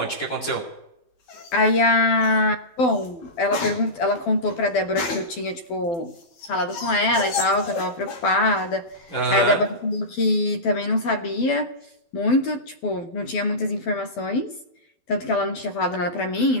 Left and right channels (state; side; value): late; right; 12 ms